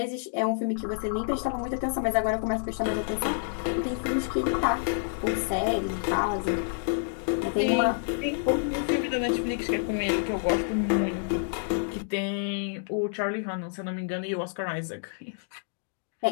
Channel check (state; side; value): silent; right; digital silence